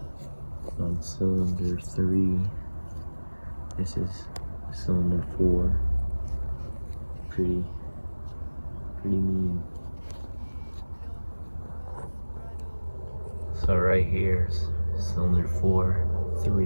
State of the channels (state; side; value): inverted; both; correlation -1.00